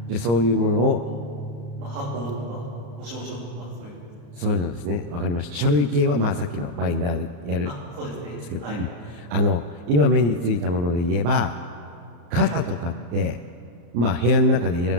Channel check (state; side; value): late; left; 34 ms